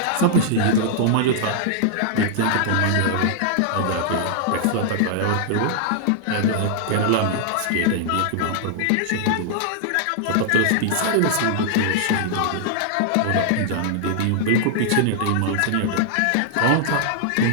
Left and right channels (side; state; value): both; different; correlation -0.01